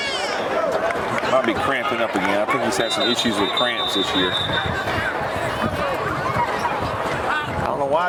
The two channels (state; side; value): identical; both; correlation 1.00